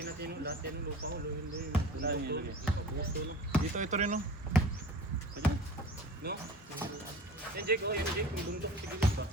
natin yun. Lahat yan yung lupa ko. Luhin. Saan yun ilagay? Gusto no? Ito rin no. No? Yan Jake, oh yan Jake. Yung bundok sa gilid ba?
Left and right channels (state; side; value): normal; both; correlation 0.39